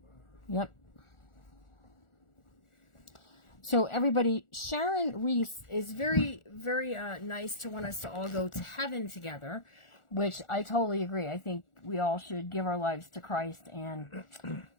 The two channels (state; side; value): late; right; 1.4 ms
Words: Yep. So everybody, Sharon Reese is very, very nice to want us to all go to heaven together, which I totally agree. I think we all should give our lives to Christ. And